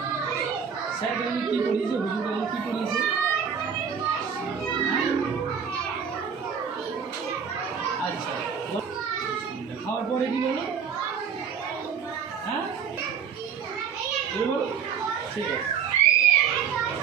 স্যার তুমি কী পড়িয়েছে? হুজুর কী পড়িয়েছে? হ্যাঁ আচ্ছা, খাওয়ার পরে কি বলো? হ্যাঁ বলো, ঠিক আছে।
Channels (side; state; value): left; quieter; 7.0 dB